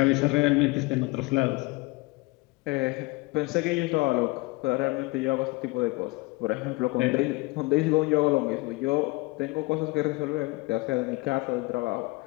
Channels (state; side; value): quieter; right; 23.4 dB